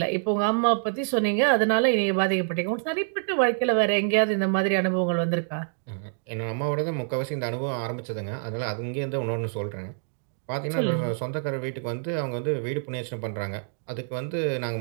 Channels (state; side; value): silent; left; digital silence